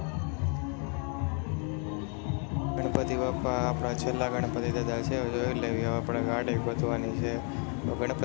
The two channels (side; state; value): right; quieter; 39.2 dB